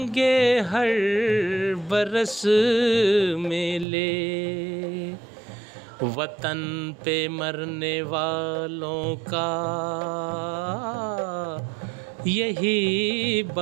हर बरस मेले, वतन पे मरने वालों का यही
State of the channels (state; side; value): drops out; left; at 3.9 s